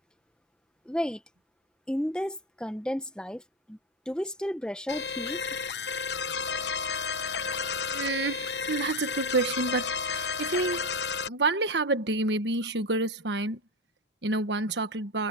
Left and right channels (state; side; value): normal; both; correlation 0.17